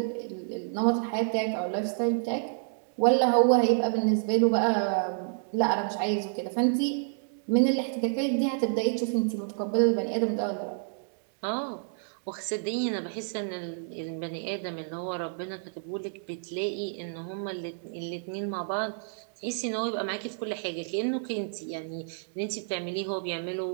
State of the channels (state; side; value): silent; left; digital silence